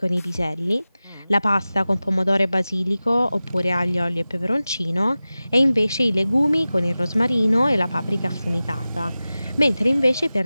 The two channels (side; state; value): both; inverted; correlation -0.96